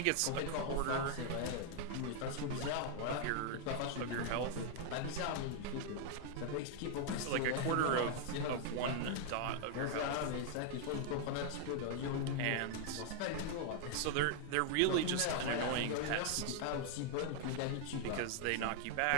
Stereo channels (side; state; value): both; different; correlation 0.00